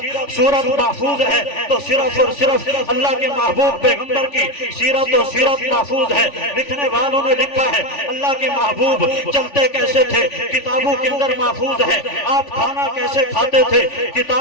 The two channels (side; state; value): right; late; 3.4 ms